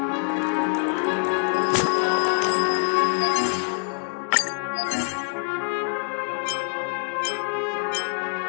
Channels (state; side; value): silent; right; 62 dB below the other